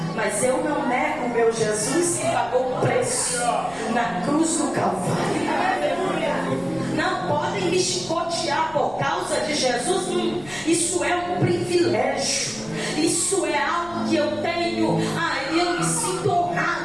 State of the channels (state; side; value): noise; left; rumble, 20 dB below the sound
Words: mas eu não nego o meu Jesus que pagou o preço na cruz do Calvário. Não podem me chicotear por causa de Jesus. Isso é um privilégio. Isso é algo que eu tenho. Eu me sinto